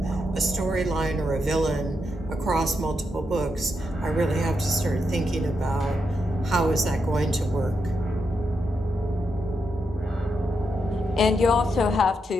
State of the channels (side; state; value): both; normal; correlation 0.83